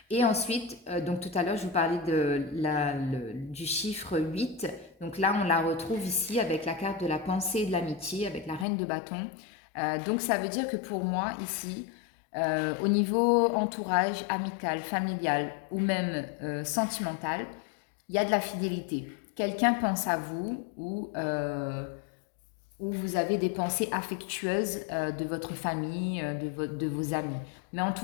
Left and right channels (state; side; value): drops out; right; at 8.7 s